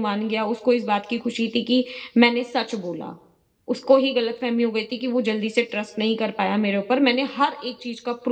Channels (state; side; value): identical; both; correlation 1.00